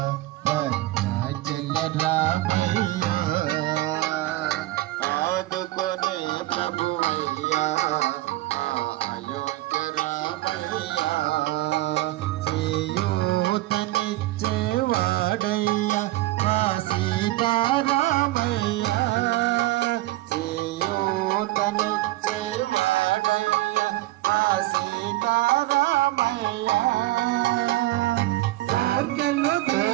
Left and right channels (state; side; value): quieter; left; 18.0 dB